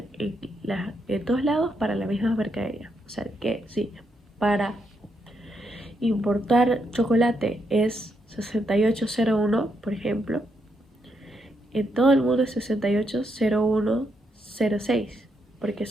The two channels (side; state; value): both; normal; correlation 0.79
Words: en todos lados para la misma mercadería. O sea que sí, para importar chocolate es 6801, por ejemplo. En todo el mundo es 680106, porque